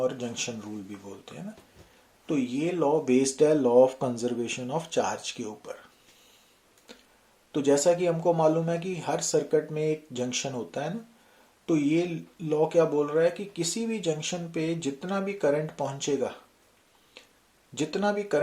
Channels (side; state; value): both; identical; correlation 1.00